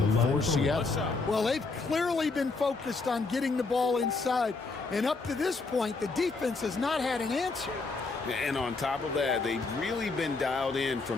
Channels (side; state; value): right; quieter; 3.9 dB